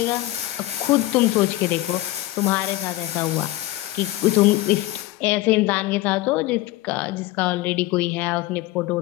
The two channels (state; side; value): quieter; right; 17.5 dB